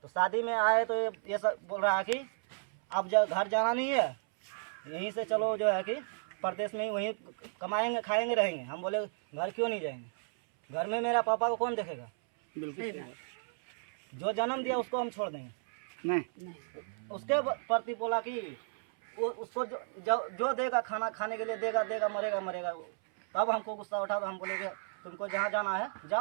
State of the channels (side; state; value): left; silent; 56 dB below the other